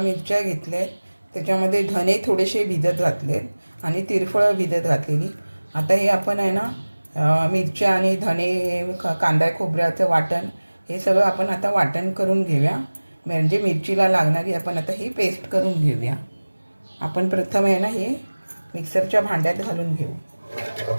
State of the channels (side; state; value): both; inverted; correlation -1.00